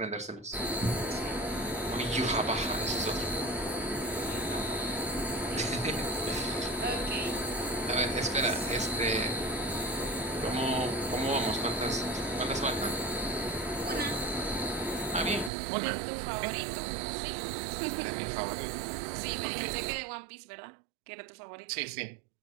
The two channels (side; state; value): left; drops out; at 15.5 s